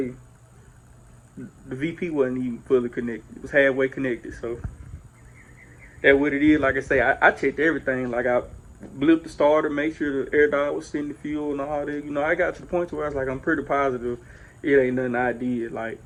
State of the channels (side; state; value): both; identical; correlation 1.00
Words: the VP wasn't even fully connected. It was halfway connected. So that's what it is. Like I say, I checked everything. Like I blipped the starter, make sure the AirDog was sending the fuel and all that. You know, I got to the point where I was like, I'm pretty positive it ain't nothing I did, like